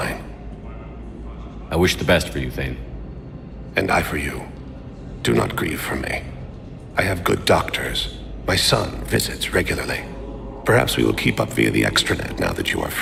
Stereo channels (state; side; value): identical; both; correlation 1.00